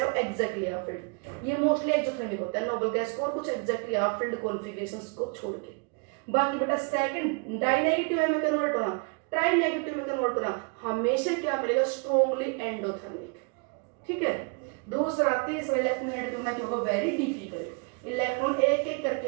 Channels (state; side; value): quieter; left; 36.6 dB